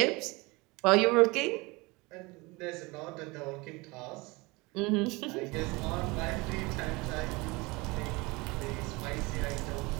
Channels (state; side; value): quieter; left; 24.6 dB